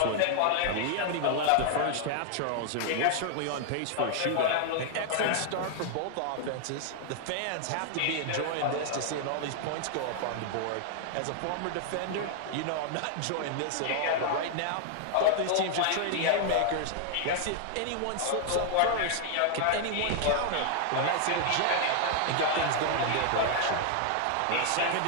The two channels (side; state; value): both; different; correlation 0.00